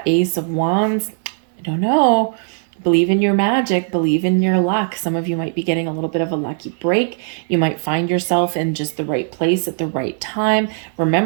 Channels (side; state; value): left; silent; digital silence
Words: Ace of Wands, I don't know, believe in your magic, believe in your luck. Some of you might be getting a little bit of a lucky break. You might find yourself in just the right place at the right time.